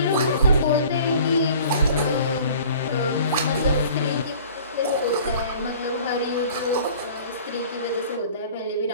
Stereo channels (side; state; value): both; inverted; correlation -0.47